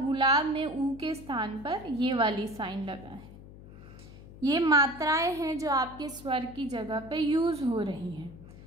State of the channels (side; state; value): left; noise; hum, 17 dB below the sound